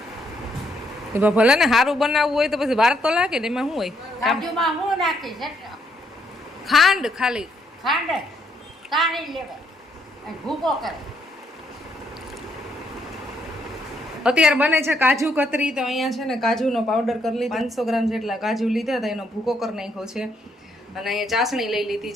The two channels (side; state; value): both; normal; correlation 0.73